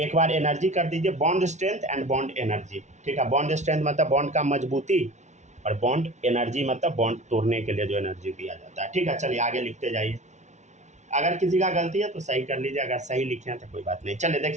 बार एनर्जी कर दीजिए, bond strength and bond energy, ठीक है। बॉन्ड स्ट्रेंथ मतलब बॉन्ड का मजबूती, और बॉन्ड एनर्जी मतलब बॉन्ड तोड़ने के लिए जो एनर्जी दिया जाता है, ठीक है। चलिए आगे लिखते जाइए, अगर किसी का गलती है तो सही कर लीजिए, अगर सही लिखे हैं तो कोई बात नहीं। चलिए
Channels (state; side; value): late; left; 0.33 ms